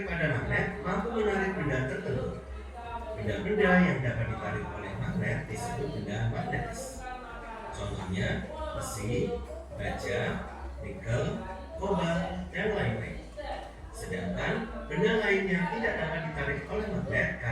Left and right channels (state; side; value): identical; both; correlation 1.00